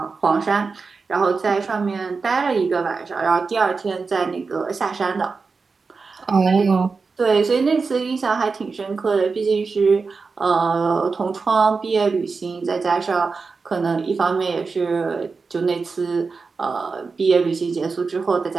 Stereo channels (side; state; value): left; quieter; 4.6 dB